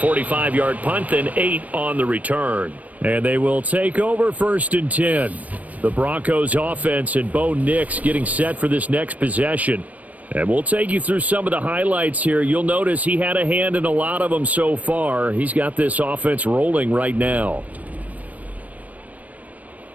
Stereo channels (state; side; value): late; left; 0.072 ms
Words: punt, then 8 on the return. And they will take over 1st and 10. The Broncos offense and Bo Nix getting set for this next possession. And we'll take you through some of the highlights here. You'll notice he had a hand in a lot of them so far. He's got this offense rolling right now.